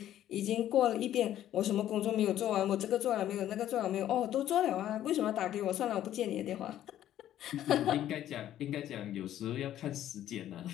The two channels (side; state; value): right; quieter; 12.1 dB